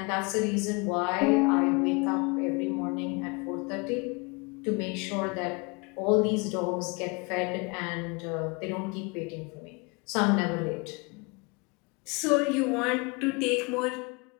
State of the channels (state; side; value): quieter; right; 29.7 dB